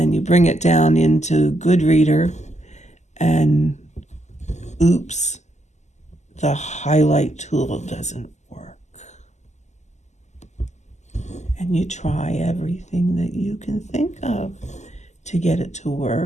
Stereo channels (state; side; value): late; right; 0.33 ms